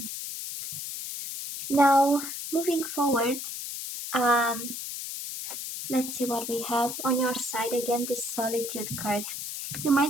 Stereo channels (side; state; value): left; noise; hiss, 6 dB below the sound